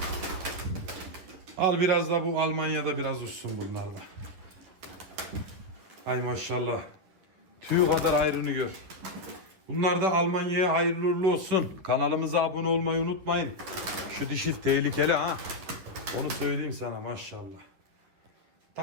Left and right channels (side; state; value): left; late; 10 ms